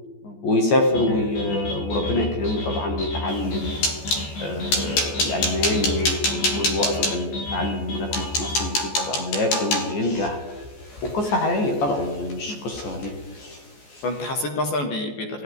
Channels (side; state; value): right; late; 14 ms